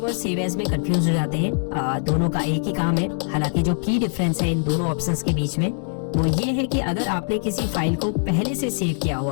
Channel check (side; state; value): right; silent; digital silence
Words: और सेव एज में कंफ्यूज हो जाते हैं। दोनों का एक ही काम है। हालांकि जो की डिफरेंस है इन दोनों ऑप्शंस के बीच में वो ये है कि अगर आपने किसी फाइल को पहले से सेव किया